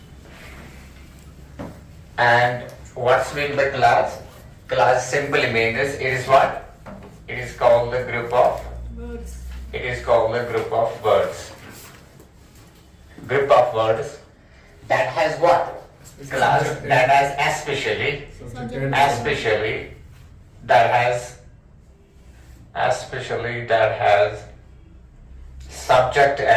And what's meant by class? Class simply means it is what? It is called the group of words. It is called the group of words. Group of words that has what? Class that has especially that has subject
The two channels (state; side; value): identical; both; correlation 1.00